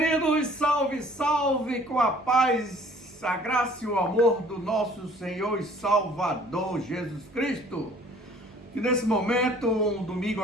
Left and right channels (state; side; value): normal; both; correlation 0.54